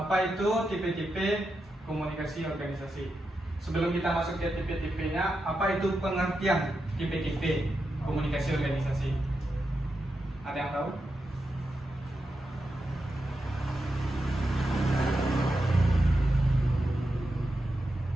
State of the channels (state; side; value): normal; both; correlation 0.87